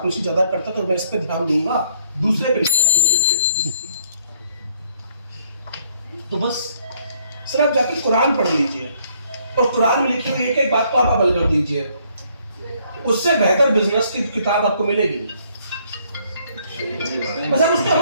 ज्यादा करता तो मैं इस पर ध्यान दूंगा, दूसरे पे। तो बस सर आप जाकर कुरान पढ़ लीजिए और कुरान में लिखी हुई एक बात को आप अमल कर दीजिए, उससे बेहतर बिजनेस की किताब आपको मिलेगी। बस आप उसको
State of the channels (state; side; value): inverted; both; correlation -0.64